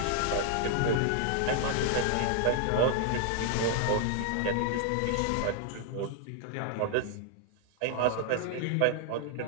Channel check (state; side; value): different; both; correlation 0.00